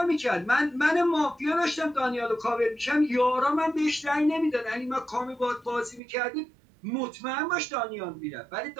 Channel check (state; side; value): drops out; left; at 6.0 s